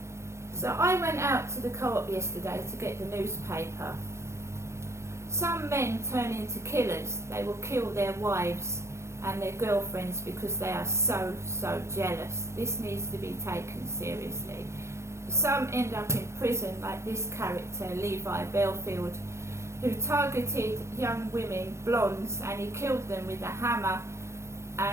So I went out to the co-op yesterday to get the newspaper. Some men turn into killers. They will kill their wives and their girlfriends because they are so jealous. This needs to be taken seriously. Some end up in prison, like this character, Levi Belfield, who targeted young women, blondes, and he killed them with a hammer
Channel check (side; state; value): left; late; 0.13 ms